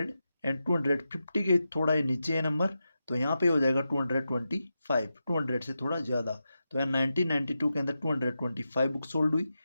एंड 250 के थोड़ा ये नीचे है नंबर, तो यहाँ पे हो जाएगा 225, 200 से थोड़ा ज़्यादा। तो यहाँ 1992 के अंदर 225 बुक सोल्ड हुई।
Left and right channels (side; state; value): both; inverted; correlation -0.90